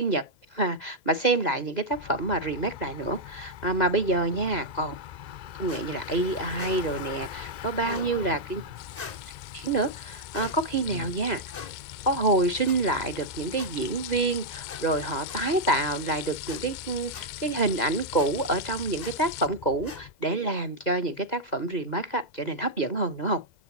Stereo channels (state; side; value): late; right; 2.0 ms